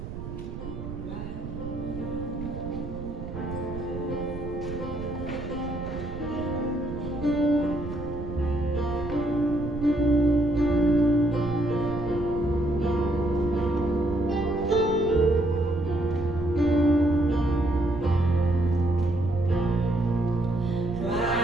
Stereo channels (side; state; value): right; noise; rumble, 9 dB below the sound